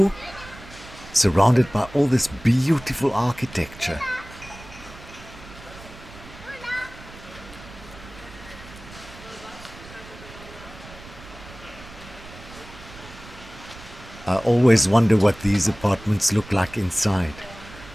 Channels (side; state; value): right; noise; rumble, 18 dB below the sound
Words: surrounded by all this beautiful architecture. I always wonder what these apartments look like inside.